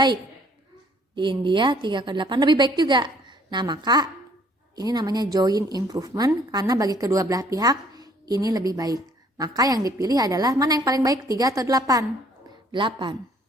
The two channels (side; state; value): both; normal; correlation 0.61